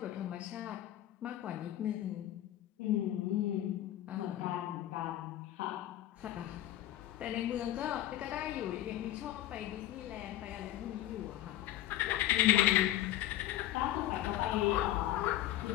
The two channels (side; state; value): right; quieter; 13.7 dB